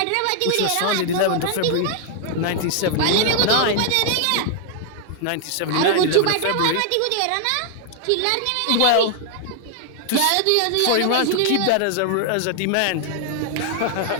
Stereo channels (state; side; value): different; both; correlation 0.00